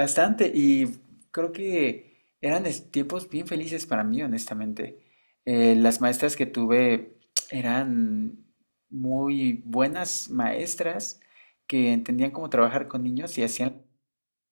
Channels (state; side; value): inverted; both; correlation -1.00